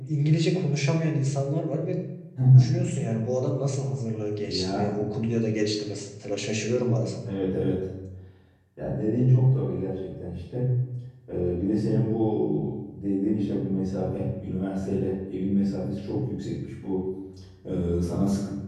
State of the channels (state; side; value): identical; both; correlation 1.00